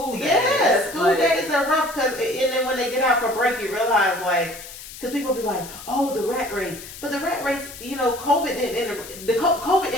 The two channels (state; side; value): noise; left; hiss, 14 dB below the sound